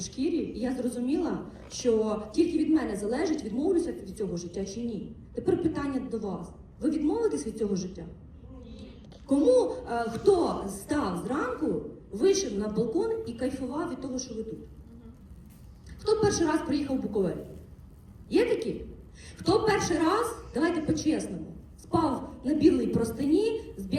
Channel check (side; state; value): both; identical; correlation 1.00